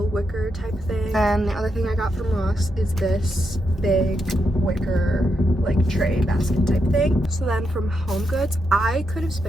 wicker type thing. And the other thing I got from Ross is this big wicker like tray basket type thing. So then from Home Goods, I could have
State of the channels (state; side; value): normal; both; correlation 0.83